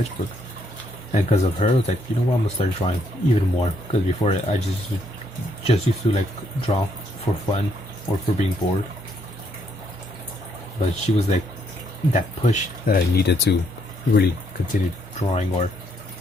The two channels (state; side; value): normal; both; correlation 0.72